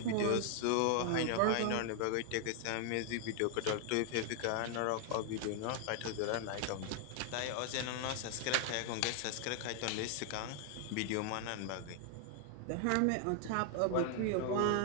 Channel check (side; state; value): both; different; correlation 0.00